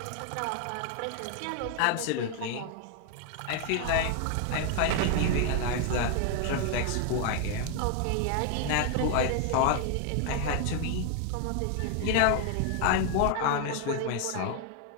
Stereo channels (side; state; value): both; different; correlation 0.00